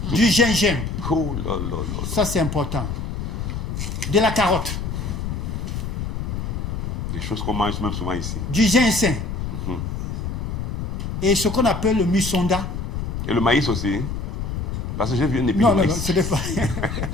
Du gingembre. Oh là là là. Ça, c'est important. De la carotte. Des choses qu'on mange même souvent ici. Du ginseng. Et ce qu'on appelle le musonda. Et le maïs aussi. Parce que j'ai vu un épi de maïs. Non, ce n'est pas...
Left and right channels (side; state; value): left; noise; rumble, 4 dB below the sound